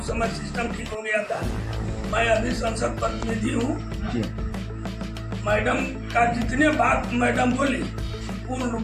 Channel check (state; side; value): identical; both; correlation 1.00